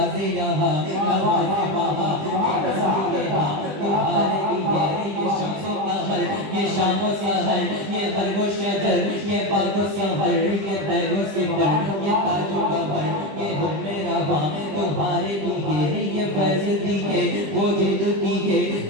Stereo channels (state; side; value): late; left; 20 ms